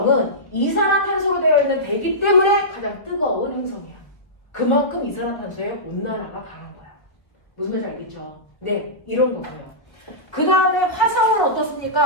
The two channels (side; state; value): right; late; 1.1 ms